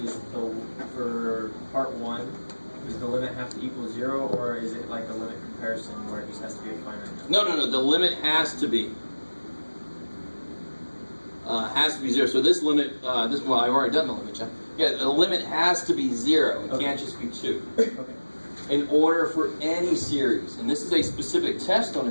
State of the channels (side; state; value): both; inverted; correlation -1.00